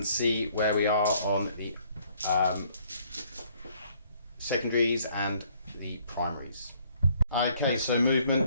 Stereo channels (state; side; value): inverted; both; correlation -0.63